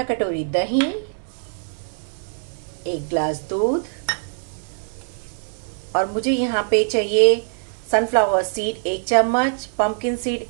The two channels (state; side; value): silent; left; 64 dB below the other